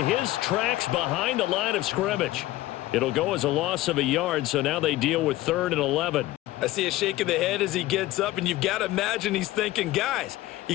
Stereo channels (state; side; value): quieter; right; 16.7 dB